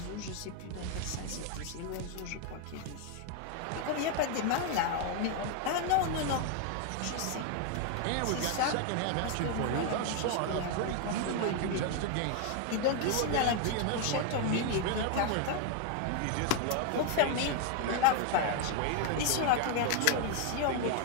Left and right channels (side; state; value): both; different; correlation 0.01